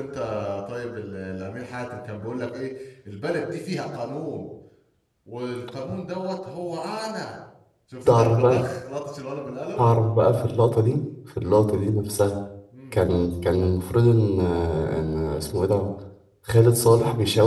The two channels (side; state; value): both; identical; correlation 1.00